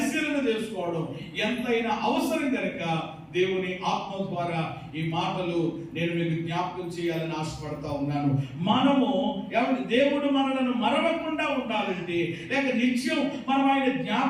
చేసుకోవడం ఎంతైనా అవసరం కనుక దేవుని ఆత్మ ద్వారా ఈ మాటలు నేను మీకు జ్ఞాపకం చేయాలని ఆశపడతా ఉన్నాను. మనము ఏమంటే దేవుడు మనలను మరవకుండా ఉండాలంటే లేక నిత్యం మనం ఆయన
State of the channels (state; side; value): identical; both; correlation 1.00